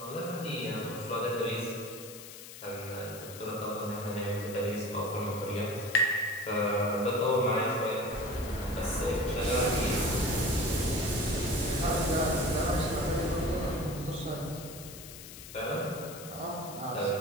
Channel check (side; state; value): left; noise; hiss, 14 dB below the sound